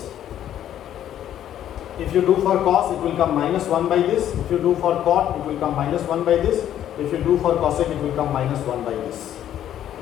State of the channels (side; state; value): right; quieter; 11.0 dB